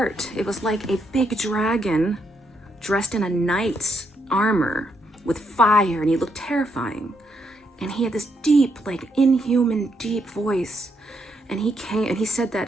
it was like a big dragon dressed in a knight's armor with fire, and he looked terrifying. And he had this deep, like inhuman deep voice. And he came and he said that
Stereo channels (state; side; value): normal; both; correlation 0.77